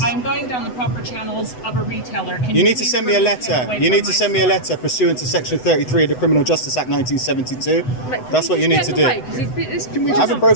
I'm going down the proper channels of a retailer. Can You need to please send me a remove him letter. away You from need to my send me a store? letter pursuant to Section 33 of the Criminal Justice Act 1972. That's what you need to do. I haven't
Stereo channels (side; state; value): right; late; 8.0 ms